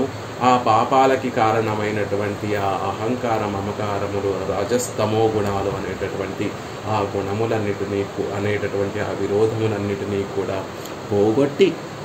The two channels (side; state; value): both; identical; correlation 1.00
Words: ఆ పాపాలకి కారణమైనటువంటి ఆ అహంకార మమకారములు, రజస్తమో గుణాలు అనేటటువంటి ఆ గుణములన్నిటినీ అనేటటువంటి ఆ విరోధములన్నిటినీ కూడా పోగొట్టి